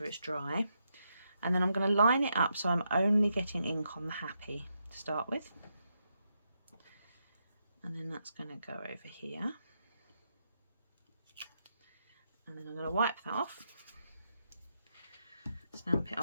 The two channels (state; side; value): inverted; both; correlation -0.82